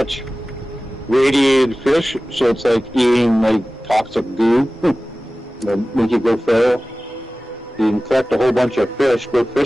radiated fish, so it's like eating like toxic goo that make you go feral. You can collect a whole bunch of fish, go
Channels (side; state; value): both; normal; correlation 0.97